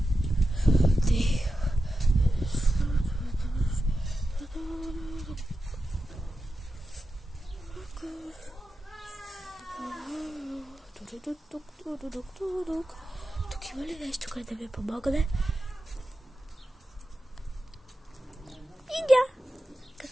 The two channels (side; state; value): both; normal; correlation 0.91